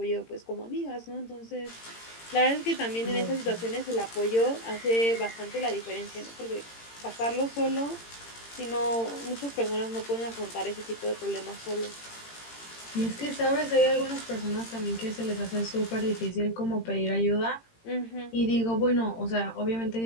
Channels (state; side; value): late; right; 18 ms